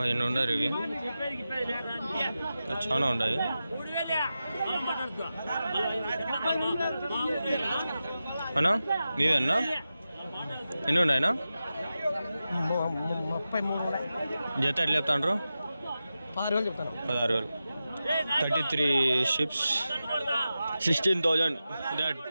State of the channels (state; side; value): inverted; both; correlation -0.92